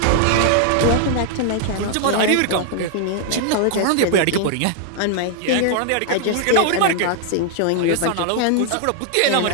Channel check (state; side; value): different; both; correlation 0.00